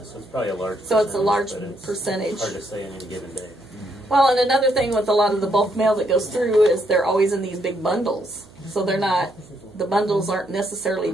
so it's probably a large. So it's a large but it's percentage. Hard to say on any given day. Well, and another thing with a lot of the bulk mail that goes through is they're always in these big bundles. So they're not, the bundles aren't necessarily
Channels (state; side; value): noise; right; hum, 24 dB below the sound